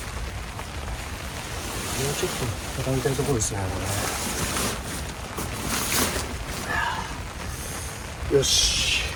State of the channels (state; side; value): identical; both; correlation 1.00